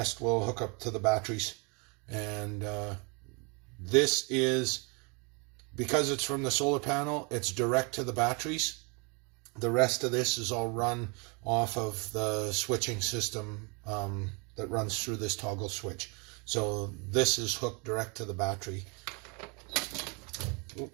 will hook up to the batteries. And this is, because it's from the solar panel, it's direct to the batteries. The rest of this is all run off of the switching system that runs through this toggle switch. So this is hooked direct to the battery.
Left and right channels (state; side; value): quieter; left; 32.3 dB